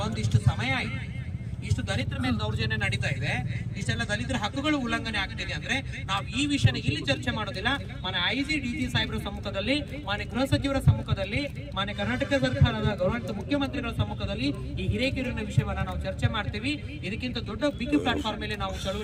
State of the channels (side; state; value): both; identical; correlation 1.00